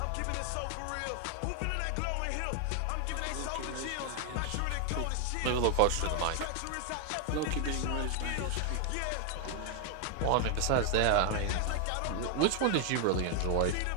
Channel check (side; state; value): both; different; correlation 0.01